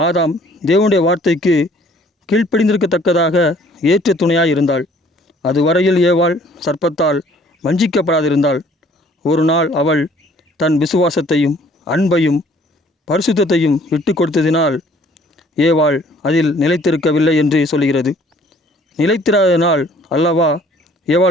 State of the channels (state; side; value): normal; both; correlation 0.57